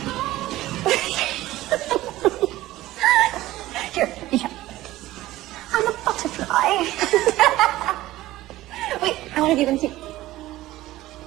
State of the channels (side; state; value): left; quieter; 16.3 dB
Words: Here. I'm a butterfly. Wait, I want to do them too.